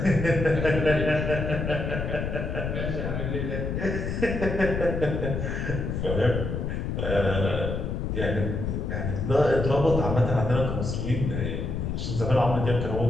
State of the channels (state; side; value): noise; left; rumble, 2 dB below the sound